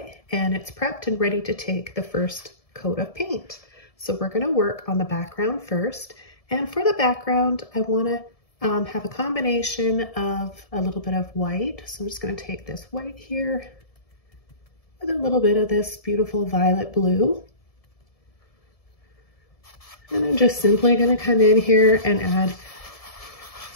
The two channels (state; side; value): late; right; 1.7 ms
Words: and it's prepped and ready to take the first coat of paint. So we're going to work on the background first, and for the background I want to have a combination of a little bit of white. So I'm just going to take this white here with a little bit of this beautiful violet blue. And I'm just simply going to come in here and add